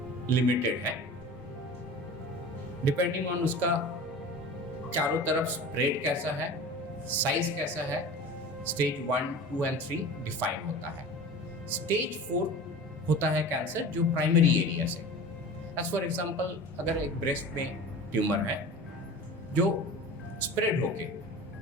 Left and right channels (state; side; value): normal; both; correlation 0.37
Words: लिमिटेड है, डिपेंडिंग ऑन उसका चारों तरफ स्प्रेड कैसा है, साइज कैसा है, स्टेज 1, 2 एंड 3 डिफाइन होता है। स्टेज 4 होता है कैंसर जो प्राइमरी एरिया से, एज फॉर एग्जांपल अगर एक ब्रेस्ट में ट्यूमर है जो स्प्रेड होके